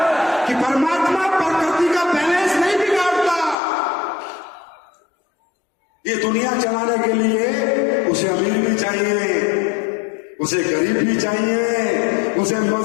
कि परमात्मा प्रकृति का बैलेंस नहीं बिगाड़ता। ये दुनिया चलाने के लिए उसे अमीर भी चाहिए, उसे गरीब भी चाहिए, उसे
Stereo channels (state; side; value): drops out; right; at 3.6 s